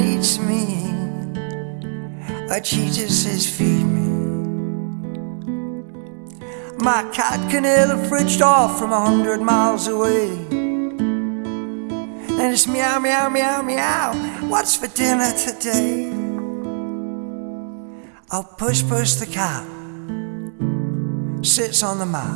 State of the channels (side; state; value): left; silent; 65 dB below the other